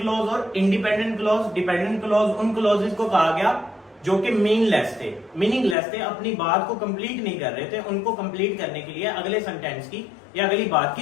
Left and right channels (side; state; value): right; drops out; at 5.8 s